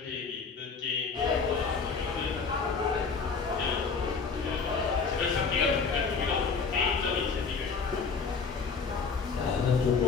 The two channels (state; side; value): quieter; right; 5.1 dB